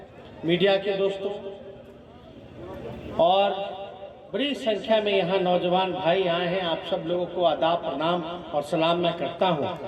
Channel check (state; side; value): identical; both; correlation 1.00